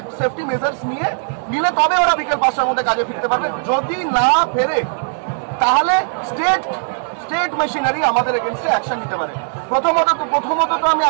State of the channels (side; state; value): left; silent; 67 dB below the other